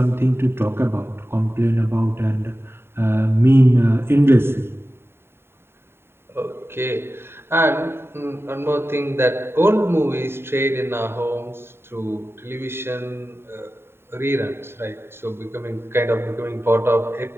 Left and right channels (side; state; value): left; late; 0.11 ms